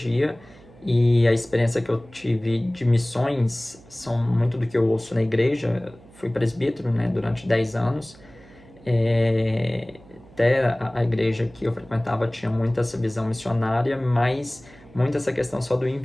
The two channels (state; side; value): noise; right; hum, 24 dB below the sound